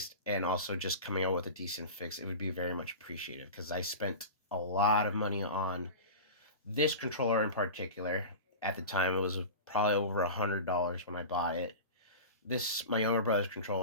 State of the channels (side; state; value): both; inverted; correlation -0.30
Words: and also just coming out with a decent fix, it would be very much appreciated because I spent a lot of money on this controller in particular. At the time, it was probably over $100 when I bought it. This my younger brother's